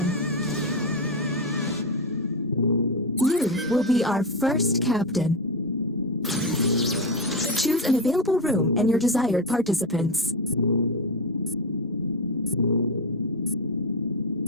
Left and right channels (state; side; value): normal; both; correlation 0.12